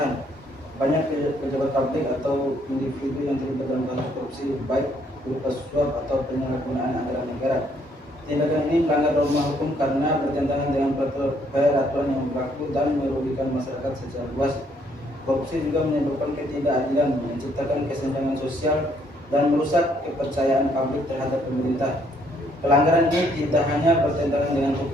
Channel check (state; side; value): normal; both; correlation 0.68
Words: Banyak pejabat publik atau individu yang terlibat dalam kasus korupsi, baik berupa suap atau penyalahgunaan anggaran negara. Tindakan ini melanggar norma hukum karena bertentangan dengan peraturan yang berlaku dan merugikan masyarakat secara luas. Korupsi juga menyebabkan ketidakadilan, menciptakan kesenjangan sosial, dan merusak kepercayaan publik terhadap pemerintah. Pelanggaran ini tidak hanya bertentangan dengan